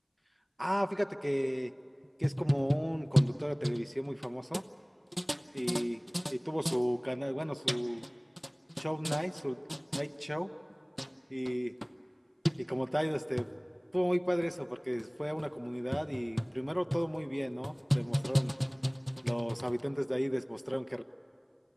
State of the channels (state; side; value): identical; both; correlation 1.00